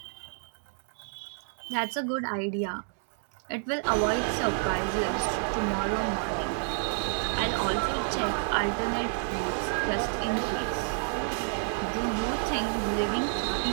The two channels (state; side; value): silent; left; digital silence